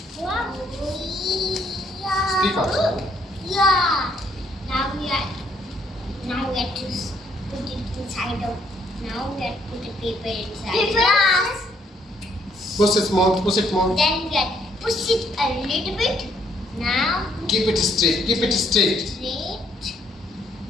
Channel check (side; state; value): both; normal; correlation 0.69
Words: Speak out. Yeah. Now we have to put it inside of. Now we have to put the paper inside. Glass. Push it more. Push it more. Then we have to push it a little bit. Now Keep it straight. Keep it straight. straight.